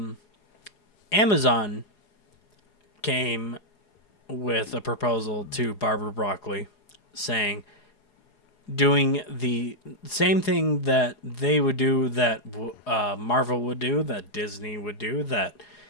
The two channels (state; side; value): late; right; 4.8 ms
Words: Amazon came with a proposal to Barbara Broccoli saying, doing the same thing that they would do, that Marvel would do, that Disney would do, that